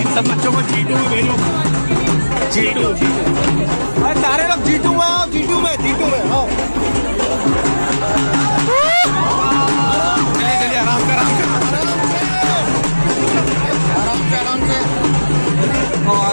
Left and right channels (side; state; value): both; inverted; correlation -1.00